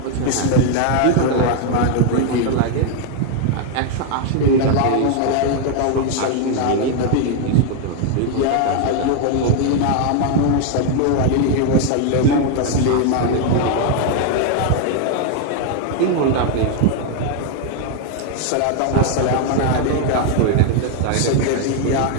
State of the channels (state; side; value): different; both; correlation 0.00